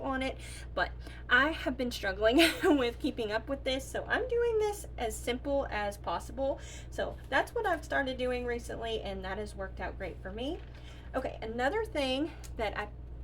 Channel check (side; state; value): both; identical; correlation 1.00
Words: on it. But I have been struggling with keeping up with this, so I'm doing this as simple as possible. So that's what I've started doing recently, and that has worked out great for me. Okay, another thing that I